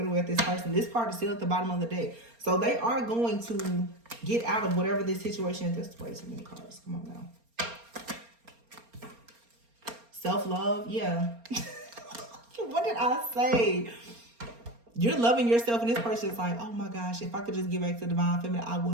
at this person. This card is still at the bottom of the deck. So they are going to get out of whatever this situation is. This way too many cards. Come on now. Self-love. Yeah. What did I say? You're loving yourself, and this person is like, oh my gosh, if I could just get back to Divine Feminine, I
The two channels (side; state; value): left; late; 4.3 ms